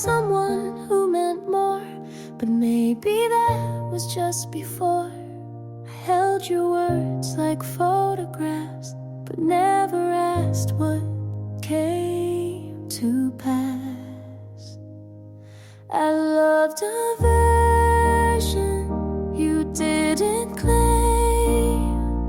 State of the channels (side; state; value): both; identical; correlation 1.00